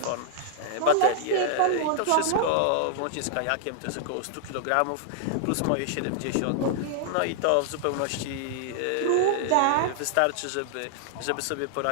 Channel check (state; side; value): different; both; correlation -0.01